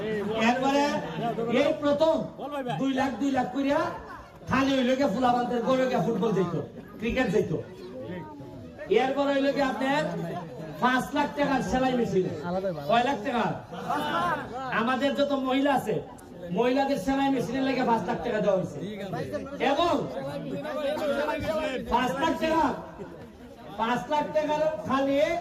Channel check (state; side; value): identical; both; correlation 1.00